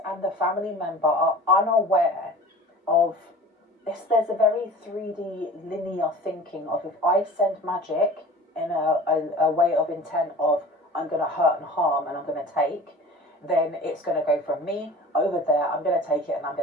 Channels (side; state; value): both; normal; correlation 0.41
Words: and the family member, are unaware of this. There's a very 3D linear thinking of, if I send magic in a way of intent of I'm going to hurt and harm and I'm going to take, then it's going to go from me over there, I'm going to take it and I'm